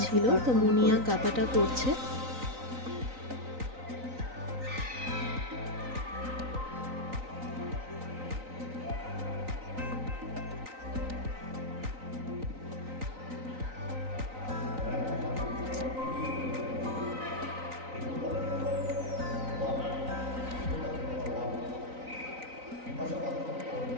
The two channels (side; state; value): left; late; 3.9 ms